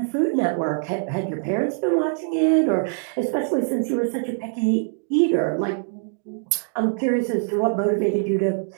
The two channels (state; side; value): silent; left; digital silence